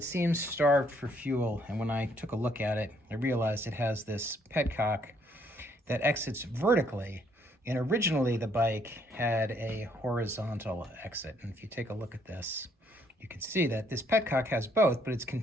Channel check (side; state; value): both; normal; correlation 0.68